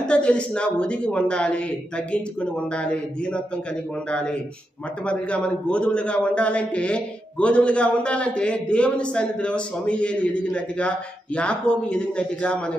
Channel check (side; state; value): both; normal; correlation 0.86